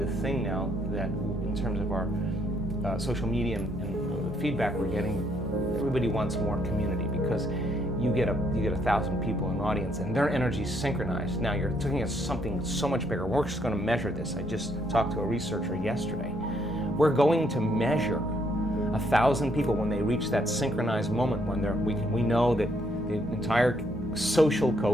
thing now that, in terms of our social media and the feedback we're getting, everybody wants more community because you get 1,000 people in the audience and their energy is synchronized. Now you're looking at something so much bigger. We're just going to measure this. I just talked to a researcher yesterday. We're going to measure 1,000 people when they reach that synchronized moment when we know that the entire social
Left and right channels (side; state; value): both; normal; correlation 0.71